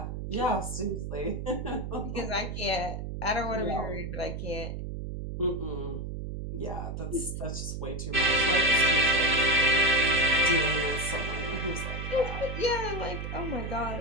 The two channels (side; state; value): right; noise; hum, 6 dB below the sound